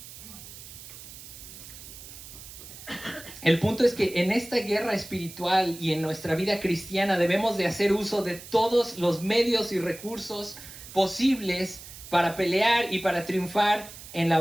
El punto es que en esta guerra espiritual y en nuestra vida cristiana debemos de hacer uso de todos los medios y recursos posibles para pelear y para triunfar en la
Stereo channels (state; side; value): noise; right; hiss, 15 dB below the sound